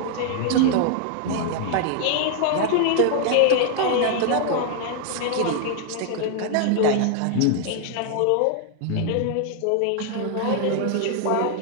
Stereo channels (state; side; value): different; both; correlation 0.00